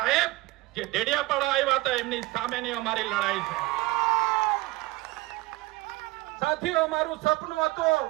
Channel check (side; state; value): left; quieter; 20.5 dB